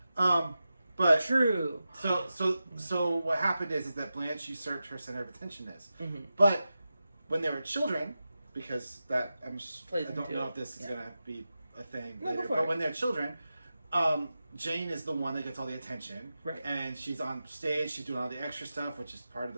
But true. So what happened is that Blanche usurped her center of attentionness. Mm-hmm. But when they were children, because I don't know if this is gonna be a thing later. But when they're children, Jane is the one that gets all the attention, right? And she's on stage, she's doing all the extra stuff, which is part of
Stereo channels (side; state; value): both; inverted; correlation -0.92